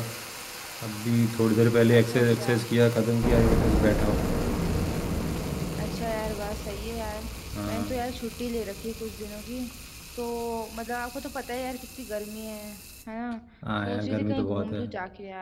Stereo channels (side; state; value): both; identical; correlation 1.00